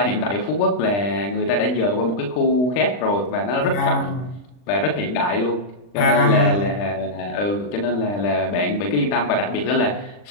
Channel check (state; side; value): late; right; 40 ms